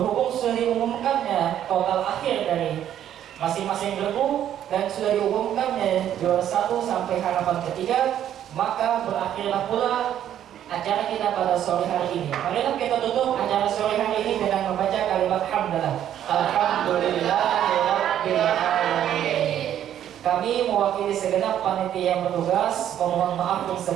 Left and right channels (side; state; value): left; quieter; 10.7 dB